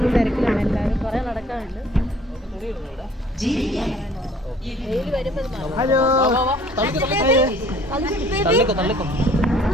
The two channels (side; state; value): both; normal; correlation 0.55